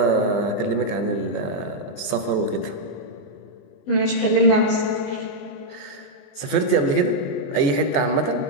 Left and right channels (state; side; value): late; right; 19 ms